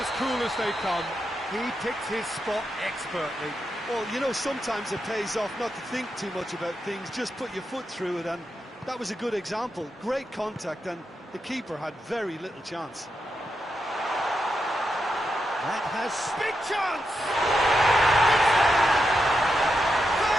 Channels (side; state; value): both; normal; correlation 0.85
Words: cool as they come. He picked his spot expertly. Well, you know, sometimes it pays off not to think too much about things, just put your foot through it, and that was a good example. Great contact, and the keeper had very little chance. That has big chance!